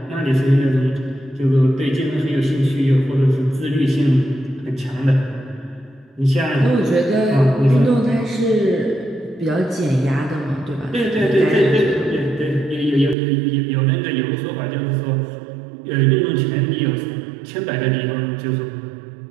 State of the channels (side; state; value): left; drops out; at 13.2 s